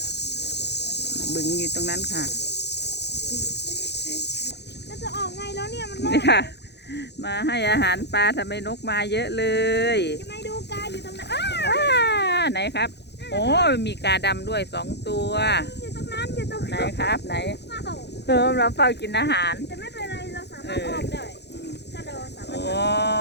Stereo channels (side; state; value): right; late; 0.49 ms